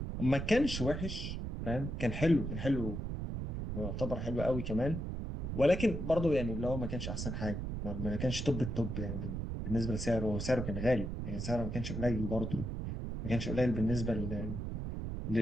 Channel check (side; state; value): right; noise; rumble, 4 dB below the sound